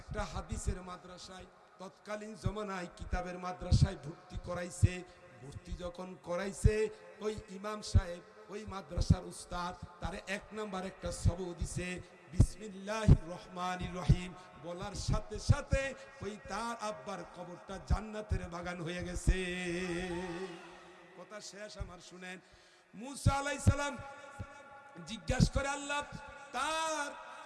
হাদিসের মাদ্রাসায়, তৎকালীন জমানায় কিতাবের মাদ্রাসায় ভর্তি করাইছে। ভর্তি যখন করাইছে, ওই ইমাম সাহেব, ওই মাদ্রাসার উস্তাদ তারে 1 নাম্বার একটা সবক দিছে, বিসমিল্লাহির রহমানির রহিম বলার সাথে সাথে ওই তার আব্বার কবরটা জান্নাতের বাগান হয়ে গেছে। কথা শেষ আমার, শুনেন। মুসা আলাইহিস সালাম জিজ্ঞাসা করে, আল্লাহ,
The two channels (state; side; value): identical; both; correlation 1.00